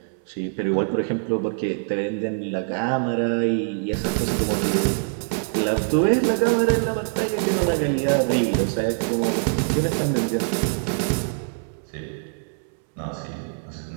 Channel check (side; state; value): left; silent; 63 dB below the other